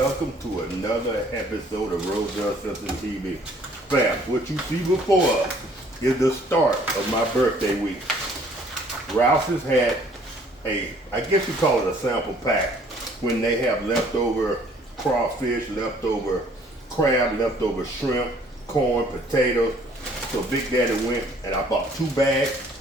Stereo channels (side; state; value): both; normal; correlation 0.59